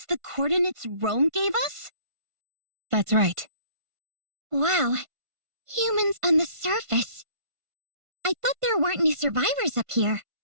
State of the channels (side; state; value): left; late; 1.5 ms